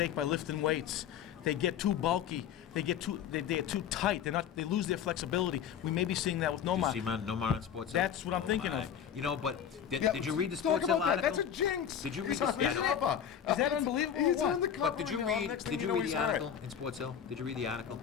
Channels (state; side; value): quieter; right; 8.7 dB